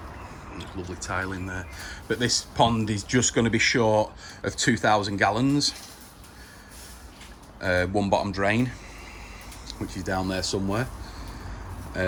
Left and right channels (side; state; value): both; identical; correlation 1.00